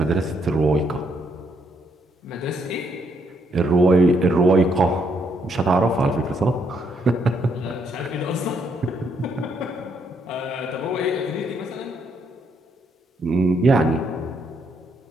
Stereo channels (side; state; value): both; normal; correlation 0.73